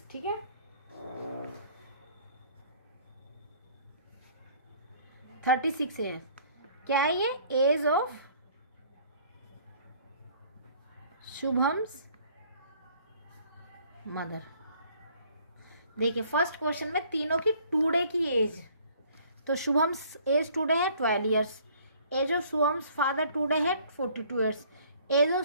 ठीक है। 36 है। क्या है ये? Age of Shubham's mother. देखिए फर्स्ट क्वेश्चन में तीनों की टुडे की एज, तो शुभम्स एज टुडे है 12 years, age of Shubham's father today है 42 years, age of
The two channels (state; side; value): inverted; both; correlation -0.57